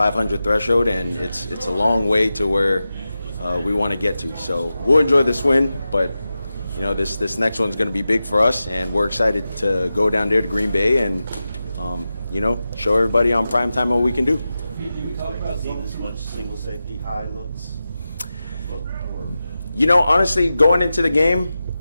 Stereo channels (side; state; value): both; inverted; correlation -0.93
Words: threshold, and it's a long way to where we want to get to. So we'll enjoy this win, but this next one's going to be big for us, and we're excited to go down there to Green Bay and show everybody on primetime what we can do. You talk about seeing this much single safety high looks? Honestly, going into the game,